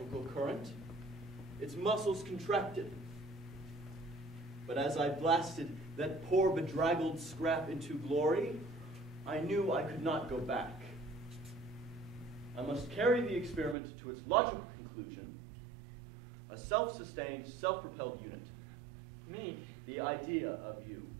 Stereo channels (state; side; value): drops out; left; at 13.8 s